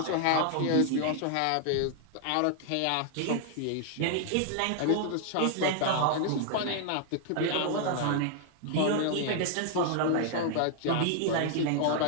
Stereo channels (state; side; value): different; both; correlation 0.00